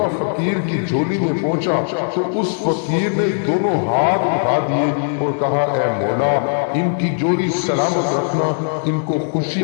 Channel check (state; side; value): silent; right; digital silence